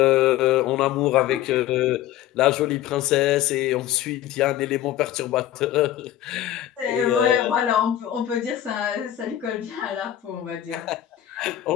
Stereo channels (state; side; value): quieter; right; 12.3 dB